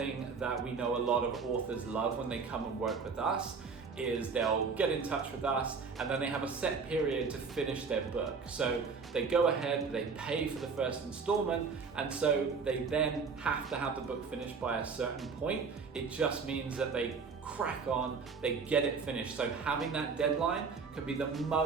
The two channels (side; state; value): left; quieter; 5.1 dB